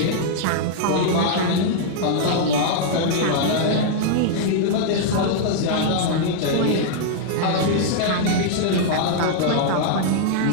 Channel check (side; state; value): both; different; correlation -0.01